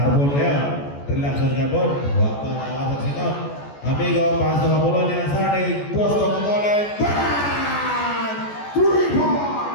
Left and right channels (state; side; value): late; right; 14 ms